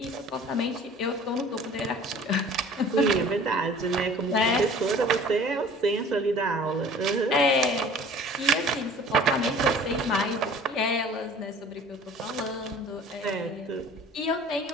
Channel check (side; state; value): both; normal; correlation 0.47